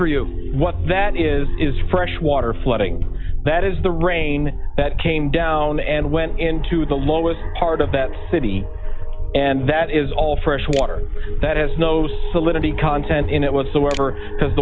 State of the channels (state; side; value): identical; both; correlation 1.00